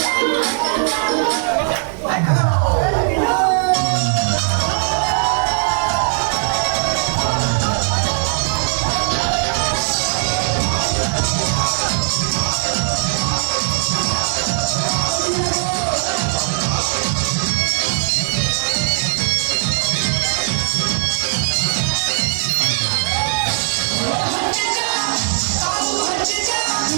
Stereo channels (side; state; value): left; silent; digital silence